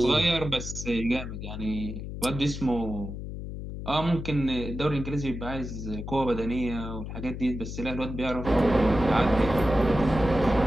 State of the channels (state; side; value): noise; left; hum, 8 dB below the sound